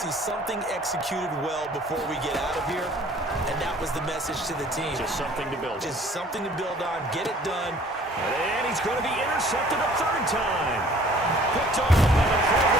something executed well before we get out of here. And that was the message to the team. Just something to build on. Just something to build on. Get it done. And he's going to be intercepted a 3rd time. Picked off by the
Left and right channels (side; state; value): both; normal; correlation 0.53